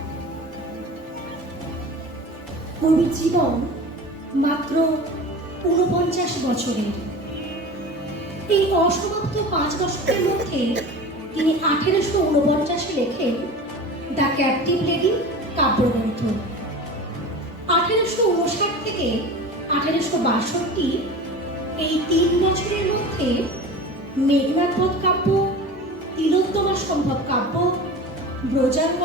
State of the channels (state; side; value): normal; both; correlation 0.34